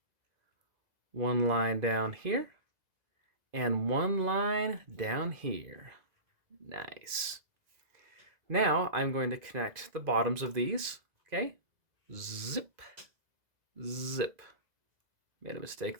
1 line down here, and 1 line down here. Nice. Now I'm going to connect the bottoms of these. Okay, zip, zip. Made a mistake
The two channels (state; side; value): late; left; 2.0 ms